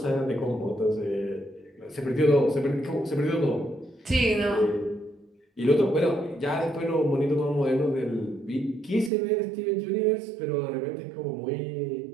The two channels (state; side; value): drops out; left; at 9.1 s